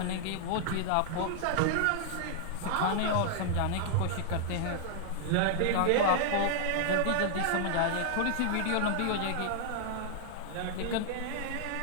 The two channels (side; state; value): both; different; correlation 0.00